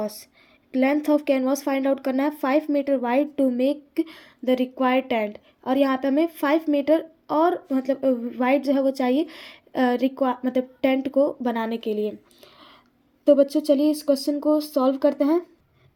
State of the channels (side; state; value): both; identical; correlation 1.00